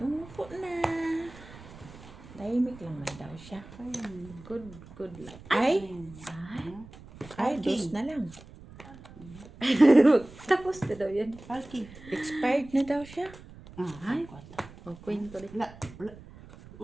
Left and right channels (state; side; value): noise; right; rumble, 18 dB below the sound